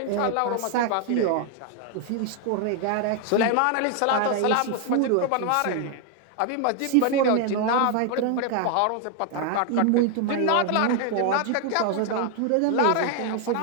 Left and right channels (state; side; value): different; both; correlation 0.00